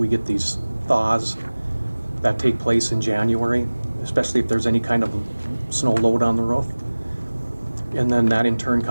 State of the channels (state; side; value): inverted; both; correlation -1.00